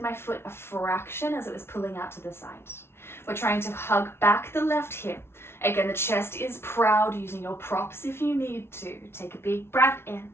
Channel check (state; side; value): late; right; 0.12 ms